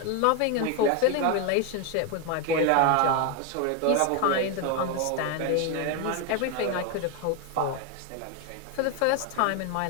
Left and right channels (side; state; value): both; different; correlation 0.02